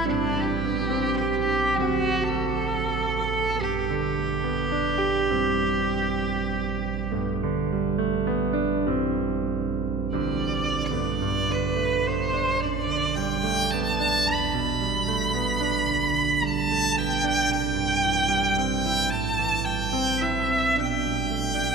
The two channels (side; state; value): right; noise; hum, 3 dB below the sound